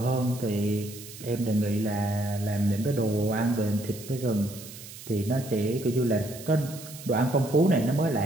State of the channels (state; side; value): noise; right; hiss, 15 dB below the sound